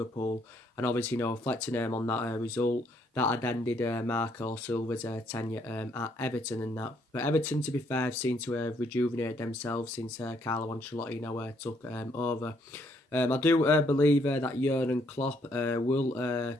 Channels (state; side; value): normal; both; correlation 0.69